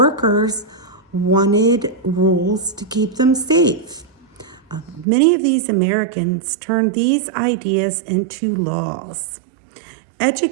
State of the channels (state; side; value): drops out; left; at 5.1 s